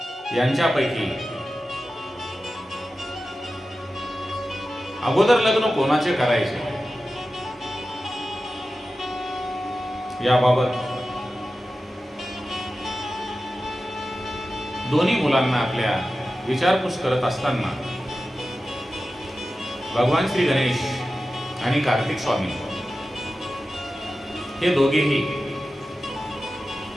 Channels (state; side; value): normal; both; correlation 0.93